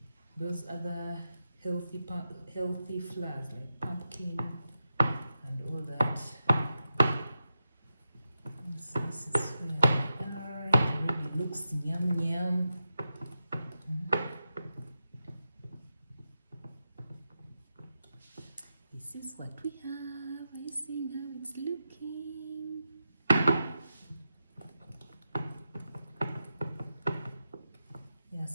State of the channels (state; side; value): inverted; both; correlation -0.89